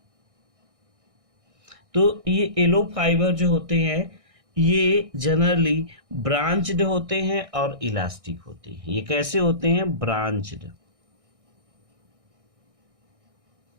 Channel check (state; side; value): late; left; 1.6 ms